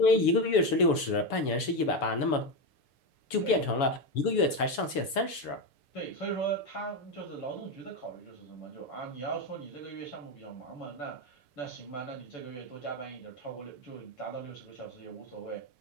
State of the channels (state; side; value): late; right; 7.0 ms